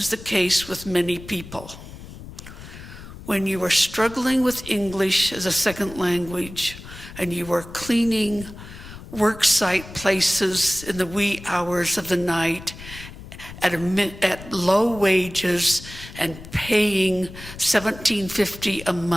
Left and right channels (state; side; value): noise; left; rumble, 15 dB below the sound